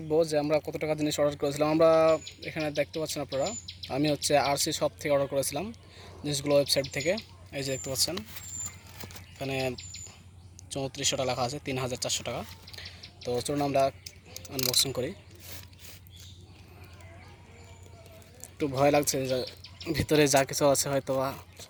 যে আমরা কত টাকা জিনিস অর্ডার করেছিলাম। আমরা এখানে দেখতে পাচ্ছেন আপনারা, আমি আরসি শপ থেকে অর্ডার করেছিলাম জিনিসগুলো, ওয়েবসাইট থেকে। এই যে দেখতে পাচ্ছেন এখানে 3400 টাকা লেখা আছে, 3400 টাকা। তো চলুন আমরা আনবক্সিং করি। একটু ভয় লাগছে যে ভিতরে যা কিছু আছে হয়তো বা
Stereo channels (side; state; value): both; identical; correlation 1.00